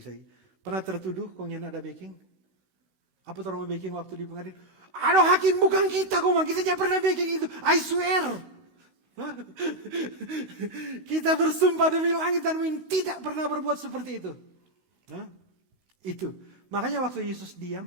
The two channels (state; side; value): late; left; 16 ms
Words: pernah tertuduh, kong dia tidak ada backing? Apa orang mau backing waktu di pengadilan? Aduh hakim bukan kita kita tidak pernah backing itu. I swear. Kita bersumpah demi langit dan bumi tidak pernah berbuat seperti itu. Itu. Makanya waktu Yesus